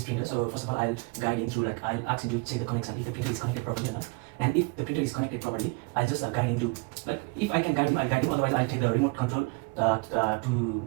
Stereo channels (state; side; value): quieter; left; 29.0 dB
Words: printer, so first of all I'll guide him through, like I'll ask him to check the connection if the printer is connected properly or not. And if the printer is connected properly, I'll just guide him to, like if I can guide him, I'll guide him. Otherwise I'll take the remote control to